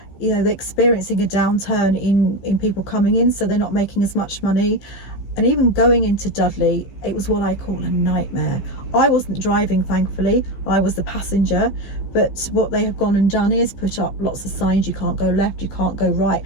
they're experiencing a downturn in people coming in, so they're not making as much money. And even going into Dudley, it was what I call a nightmare. I wasn't driving, thankfully, I was the passenger, but what they have gone and done is put up lots of signs. You can't go left, you can't go right,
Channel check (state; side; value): late; right; 15 ms